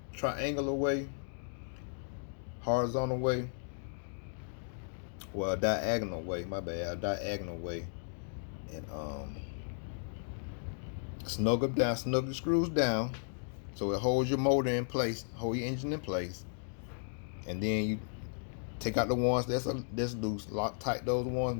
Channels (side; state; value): right; silent; digital silence